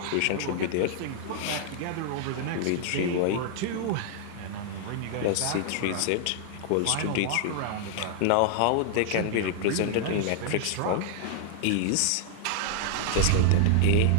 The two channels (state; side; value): different; both; correlation 0.00